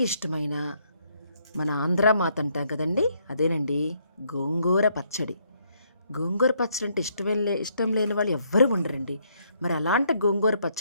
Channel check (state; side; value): inverted; both; correlation -0.71